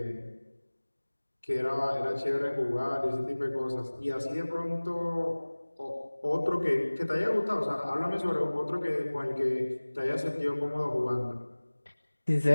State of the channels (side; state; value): both; inverted; correlation -1.00